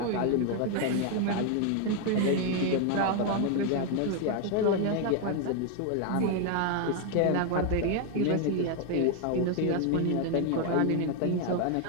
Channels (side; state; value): both; different; correlation 0.01